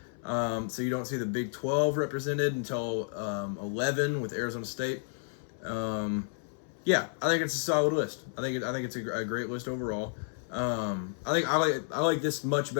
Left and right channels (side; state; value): right; silent; 57 dB below the other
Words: So you don't see the Big 12 represented until 11 with Arizona State. Yeah, I think it's a solid list. I think it's a great list overall. I like this much